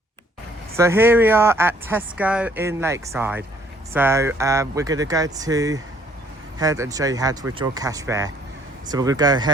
So here we are at Tesco in Lakeside. So we're going to go to head and show you how to withdraw cash there. So we're going to go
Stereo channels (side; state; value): both; normal; correlation 0.62